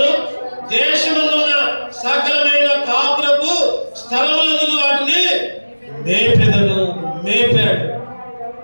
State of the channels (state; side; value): inverted; both; correlation -1.00